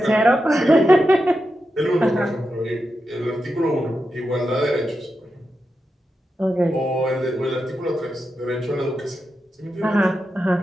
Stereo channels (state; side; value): normal; both; correlation 0.88